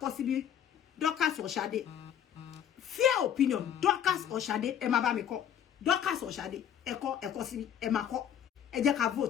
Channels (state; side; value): quieter; right; 9.5 dB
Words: síbi Dorcas or Ṣadé fair opinion Dorcas or Ṣadé ẹ máa bá mi kọ Dorcas or Shade, eko si ẹ máa kọ. Ẹ jẹ́ ká